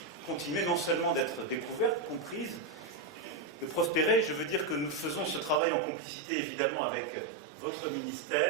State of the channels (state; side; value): drops out; left; at 5.6 s